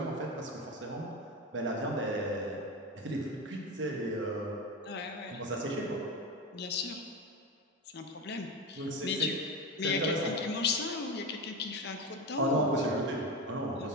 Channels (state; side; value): normal; both; correlation 0.20